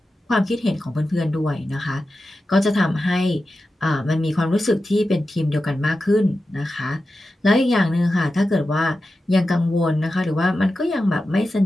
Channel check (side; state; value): both; normal; correlation 0.92